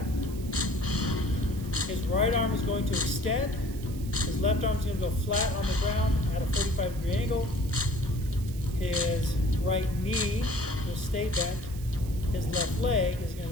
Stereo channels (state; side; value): noise; right; hiss, 18 dB below the sound